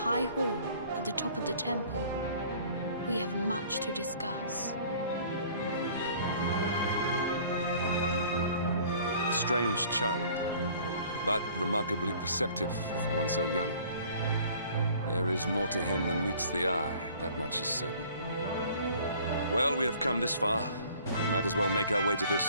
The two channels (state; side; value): inverted; both; correlation -0.52